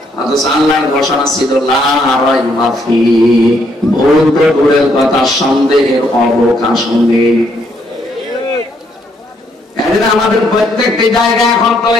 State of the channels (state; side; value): normal; both; correlation 0.72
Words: অথচ আল্লাহর ঘোষণা ছিল লা রাইবা ফীহি, ভুল তো দূরের কথা, সন্দেহের অবকাশ নেই। আমাদের প্রত্যেকটি জায়গা এখন